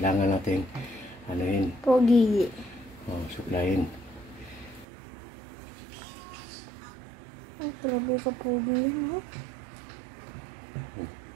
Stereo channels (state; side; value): drops out; left; at 4.9 s